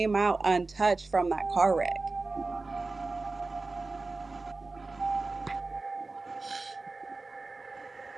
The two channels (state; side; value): quieter; left; 3.6 dB